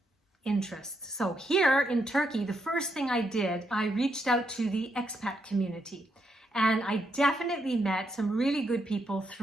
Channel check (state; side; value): normal; both; correlation 0.79